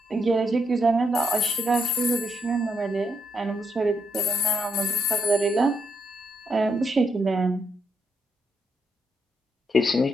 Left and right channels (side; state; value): both; normal; correlation 0.77